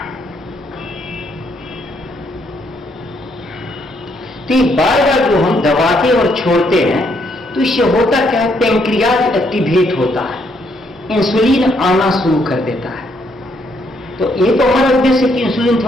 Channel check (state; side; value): normal; both; correlation 0.72